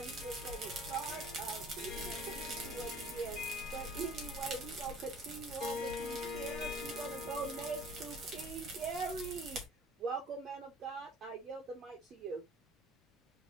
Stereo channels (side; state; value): both; normal; correlation 0.50